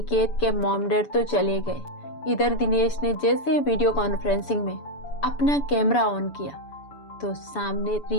के मॉम डैड तो चले गए। इधर दिनेश ने जैसे वीडियो कॉन्फ्रेंसिंग में अपना कैमरा ऑन किया तो सामने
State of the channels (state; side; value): late; right; 7.0 ms